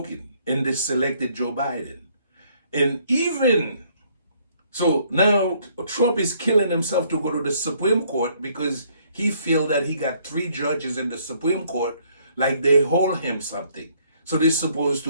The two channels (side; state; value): both; inverted; correlation -0.65